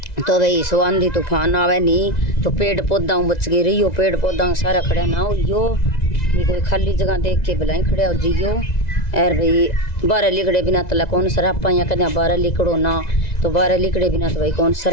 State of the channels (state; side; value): late; right; 2.0 ms